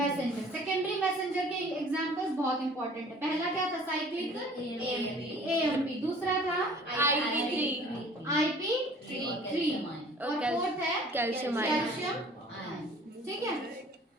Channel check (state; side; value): normal; both; correlation 0.50